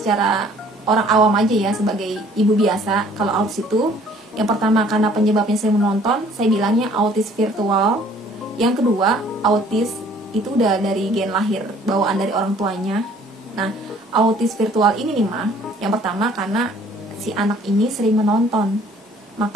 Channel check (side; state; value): both; normal; correlation 0.56